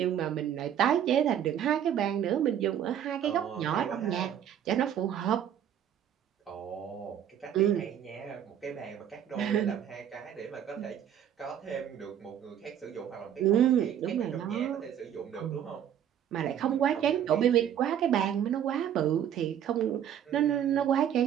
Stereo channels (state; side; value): quieter; left; 9.8 dB